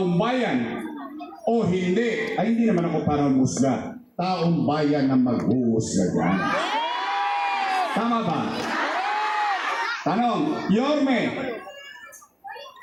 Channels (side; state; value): both; identical; correlation 1.00